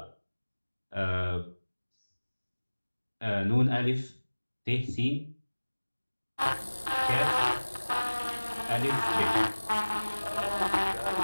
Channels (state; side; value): inverted; both; correlation -1.00